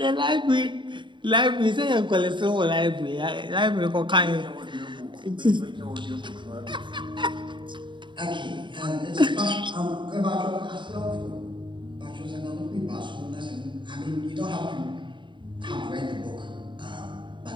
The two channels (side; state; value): left; late; 0.23 ms